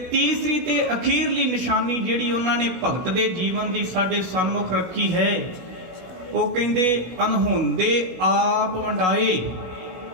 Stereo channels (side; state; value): left; late; 16 ms